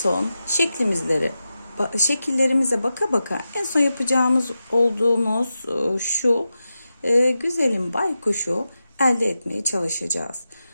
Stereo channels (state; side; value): inverted; both; correlation -0.91